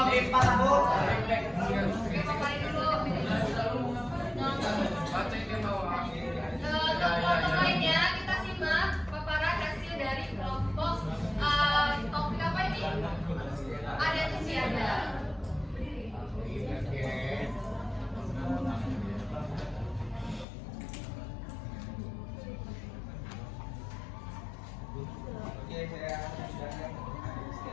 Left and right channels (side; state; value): right; drops out; at 20.5 s